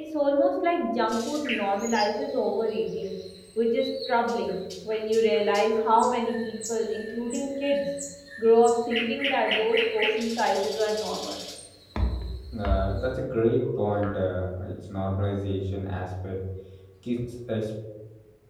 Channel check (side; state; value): both; identical; correlation 1.00